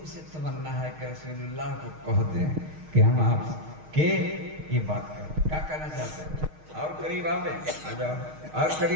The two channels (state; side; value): late; left; 6.4 ms